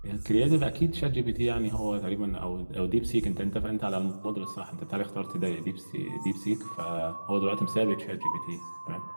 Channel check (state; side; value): inverted; both; correlation -1.00